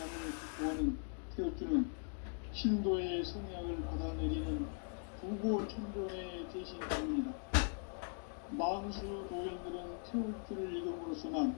극복하는 태엽주는 신도의 성약을 받아내리는 부고천존의 대신 때문이다. 망수 도인들은 태울주를 읽음으로써만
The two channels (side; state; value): right; silent; 51 dB below the other